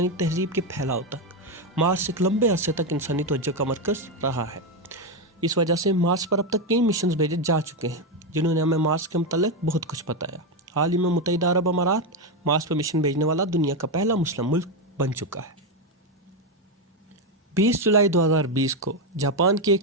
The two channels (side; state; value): both; normal; correlation 0.08